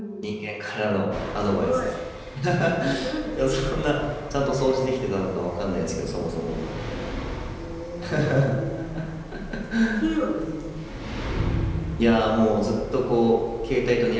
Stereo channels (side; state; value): both; identical; correlation 1.00